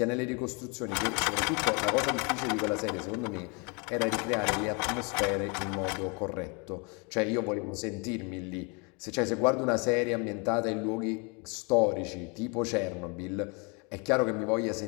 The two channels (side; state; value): right; quieter; 32.2 dB